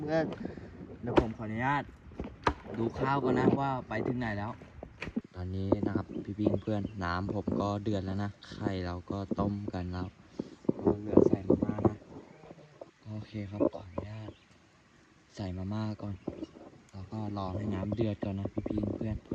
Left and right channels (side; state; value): both; identical; correlation 1.00